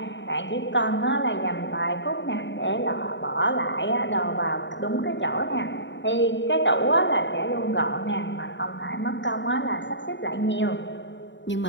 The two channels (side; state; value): right; late; 0.53 ms